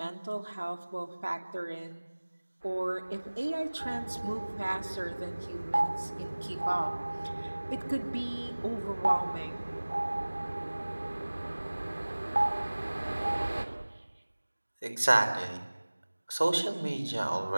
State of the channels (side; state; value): both; inverted; correlation -1.00